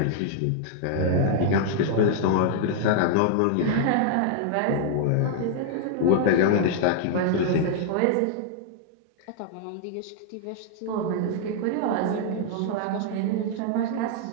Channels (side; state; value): both; different; correlation 0.00